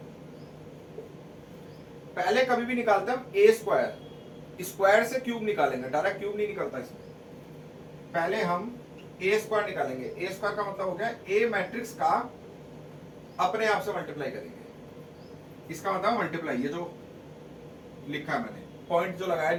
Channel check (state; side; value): identical; both; correlation 1.00